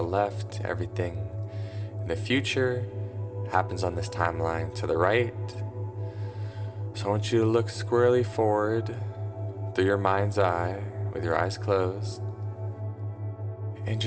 left. Everything in the future happens on this timeline to the right. So I want you to look squarely forward through your mind's eye with your eyes closed and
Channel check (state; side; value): identical; both; correlation 1.00